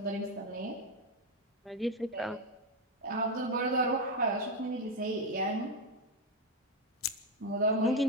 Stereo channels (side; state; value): both; normal; correlation 0.08